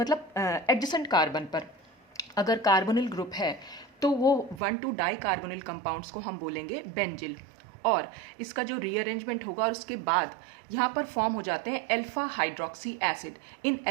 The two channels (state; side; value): drops out; left; at 4.6 s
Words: एडजेसेंट कार्बन पर अगर कार्बोनिल ग्रुप है तो वो 1,2 डाई कार्बोनिल कंपाउंड्स को हम बोलेंगे बेंजिल। और इसका जो रीअरेंजमेंट होगा और उसके बाद यहाँ पर फॉर्म हो जाते हैं अल्फा हाइड्रोक्सी एसिड। इन